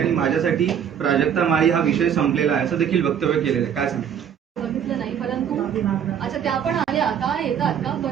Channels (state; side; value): quieter; left; 8.5 dB